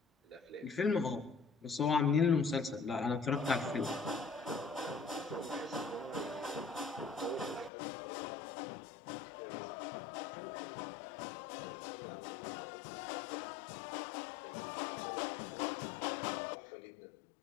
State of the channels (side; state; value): right; drops out; at 7.7 s